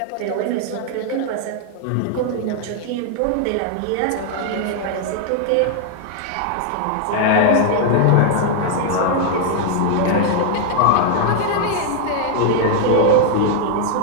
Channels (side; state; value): both; different; correlation 0.00